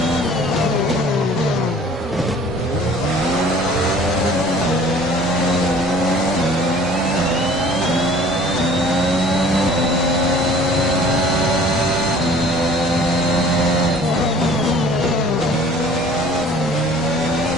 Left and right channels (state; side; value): normal; both; correlation 0.50